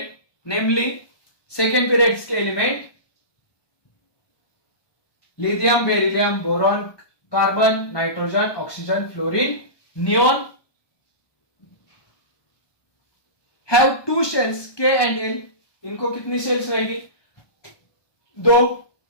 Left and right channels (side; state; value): right; late; 1.2 ms